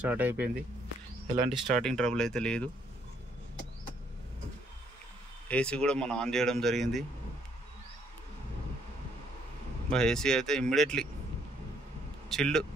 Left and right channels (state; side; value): normal; both; correlation 0.68